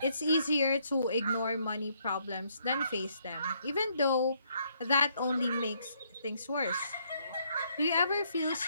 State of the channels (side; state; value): both; inverted; correlation -0.71